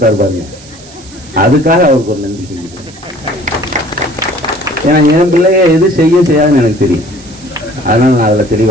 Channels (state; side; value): noise; right; hiss, 21 dB below the sound